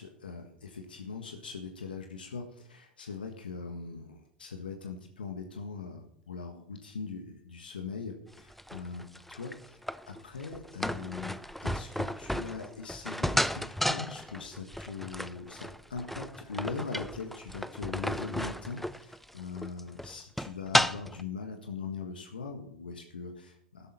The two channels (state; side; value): normal; both; correlation 0.56